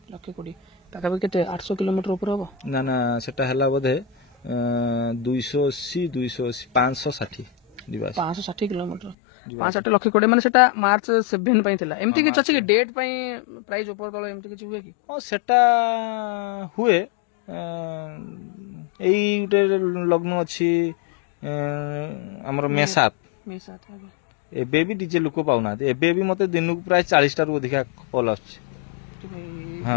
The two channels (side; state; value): right; drops out; at 9.2 s